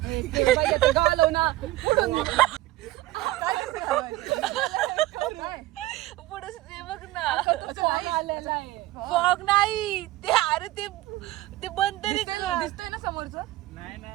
घालव ना पुढे बघ ना. आलेला आहे. फॉग नाही ते, अरे ते बंद तरी दिसतंय ना समोरचं. नाही ना,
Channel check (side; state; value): left; quieter; 16.9 dB